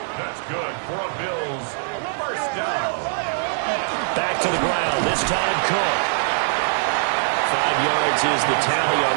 That's good for a Bills first down. Back to the ground. This time Cook. 5 yards is the tally on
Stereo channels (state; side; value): silent; left; digital silence